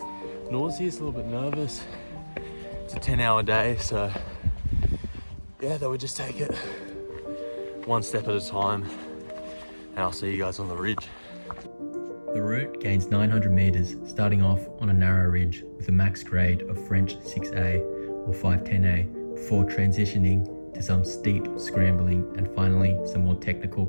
nauseous, a little bit nervous. It's a 10-hour day, so yeah, they would just take it one step at a time, and I'll see you guys on the ridge. The route gains 900 meters, starting off on a narrow ridge with a max grade of French 6A or 510A, before transitioning to some steep scrambling and finally some more technical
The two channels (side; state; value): both; inverted; correlation -1.00